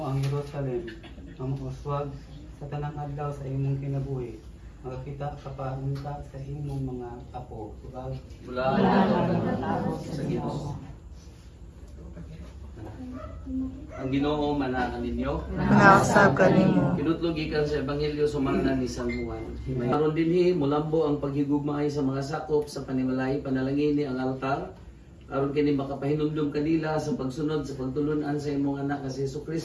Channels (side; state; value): both; identical; correlation 1.00